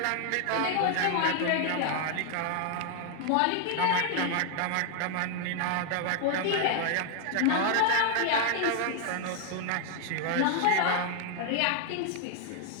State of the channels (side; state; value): both; different; correlation 0.00